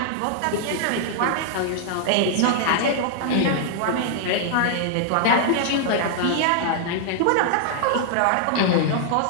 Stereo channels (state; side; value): different; both; correlation -0.01